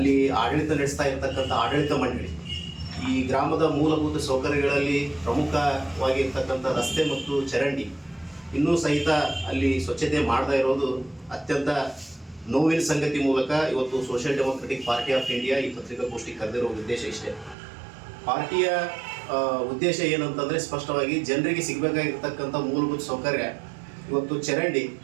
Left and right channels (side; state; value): left; drops out; at 17.6 s